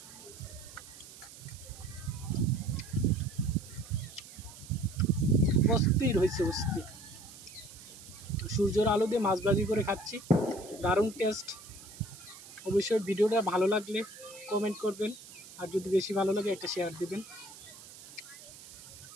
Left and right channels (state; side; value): noise; right; hiss, 17 dB below the sound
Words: অস্থির হয়েছে, অস্থির। সূর্যের আলো দিয়ে মাছ ভাজি করে খাচ্ছি, দারুণ টেস্ট। অবশ্যই ভিডিওটা ভালো লাগলে কমেন্ট করবেন, আর যদি বেশি ভালো লাগে একটা শেয়ার দিবেন।